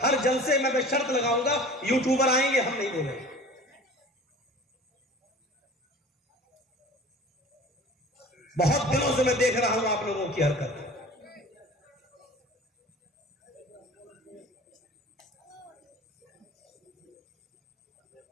ہر جلسے میں شرط لگاؤں گا، یوٹیوبر آئیں گے ہم نہیں بولیں گے۔ بہت دنوں سے میں دیکھ رہا ہوں آپ لوگوں کی حرکت۔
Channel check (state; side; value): normal; both; correlation 0.42